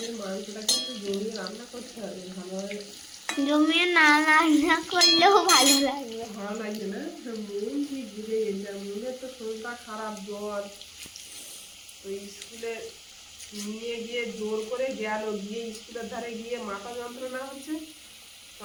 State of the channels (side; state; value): both; identical; correlation 1.00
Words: মাংসটাকে একটু জমিয়ে রান্না করতে হবে ভালোভাবে। জমিয়ে না রান্না করলেও ভালো লাগবে। ভালো লাগছে না? মন ঠিক বুঝে গেছে। মনের তো শরীরটা খারাপ, জ্বর। তো স্কুলে নিয়ে গিয়ে জোর করে গেল, গিয়ে স্কুলের ধারে গিয়ে মাথা যন্ত্রণা হচ্ছে।